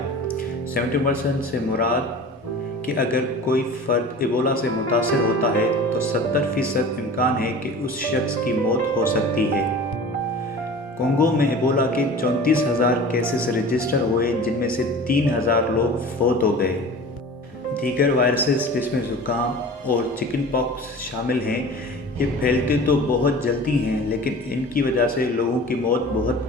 70% سے مراد کہ اگر کوئی فرد ایبولا سے متاثر ہوتا ہے تو 70% امکان ہے کہ اس شخص کی موت ہو سکتی ہے۔ کونگو میں ایبولا کے 34,000 کیسز رجسٹر ہوئے جن میں سے 3,000 لوگ فوت ہو گئے۔ دیگر وائرسز جس میں زکام اور چکن پاکس شامل ہیں یہ پھیلتے تو بہت جلدی ہیں لیکن ان کی وجہ سے لوگوں کی موت بہت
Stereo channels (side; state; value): both; normal; correlation 0.39